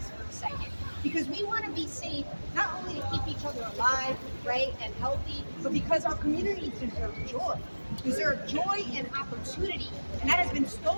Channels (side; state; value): both; inverted; correlation -1.00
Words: for a second. Because we want to be safe, not only to keep each other alive, right, and healthy, but because our communities deserve joy and opportunity, and that has been